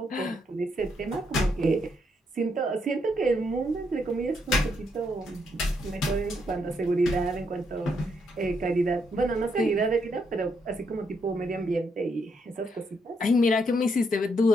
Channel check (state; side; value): normal; both; correlation 0.76